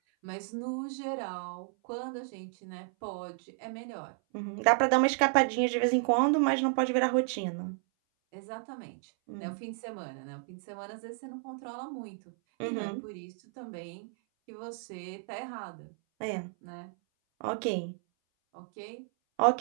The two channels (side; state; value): left; silent; 56 dB below the other